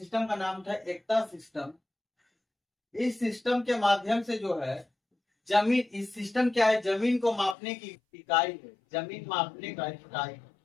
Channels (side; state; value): right; drops out; at 7.6 s